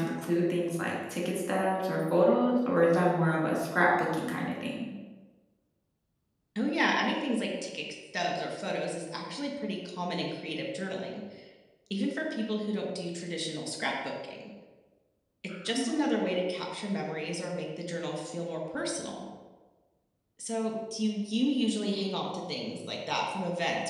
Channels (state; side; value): identical; both; correlation 1.00